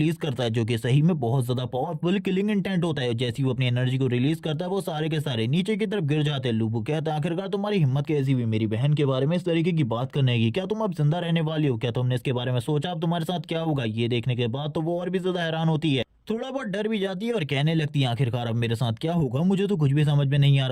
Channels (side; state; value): both; identical; correlation 1.00